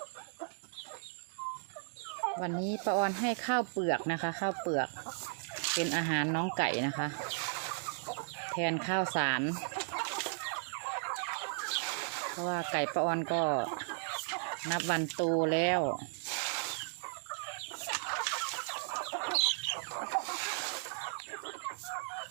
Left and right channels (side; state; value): left; silent; digital silence